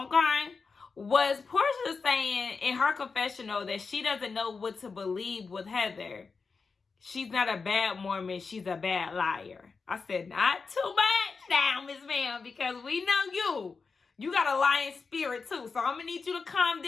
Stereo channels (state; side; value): quieter; right; 4.8 dB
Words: was Portia saying in her confessional that she doesn't know what to believe with Heather. She's not a bad Mormon, she's a bad liar. I said, not too much now, Miss Ma'am, because we know you. You got a lying spirit too, so I'm going to need you to calm